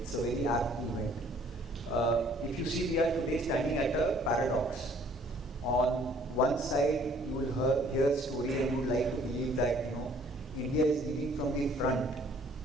It's a very apt event. If you see, we are today standing at a paradox. On one side, you will hear a story and you would like to believe that India is leading from the front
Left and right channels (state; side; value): normal; both; correlation 0.58